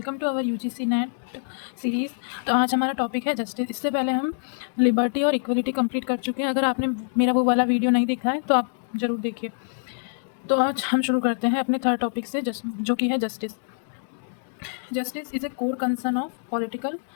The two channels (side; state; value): right; silent; digital silence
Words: to our UGC NET series. तो आज हमारा टॉपिक है जस्टिस। इससे पहले हम लिबर्टी और इक्वलिटी कंप्लीट कर चुके हैं। अगर आपने मेरा वो वाला वीडियो नहीं देखा है तो आप ज़रूर देखिए। तो आज हम शुरू करते हैं अपने थर्ड टॉपिक से, जो कि है justice. Justice is a core concern of political